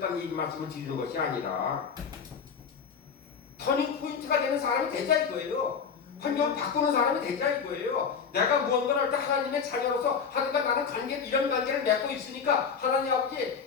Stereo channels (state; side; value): quieter; right; 6.3 dB